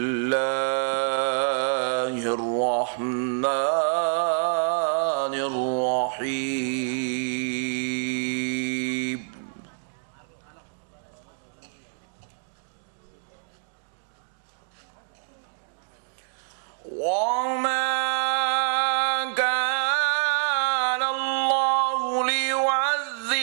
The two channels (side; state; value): left; silent; digital silence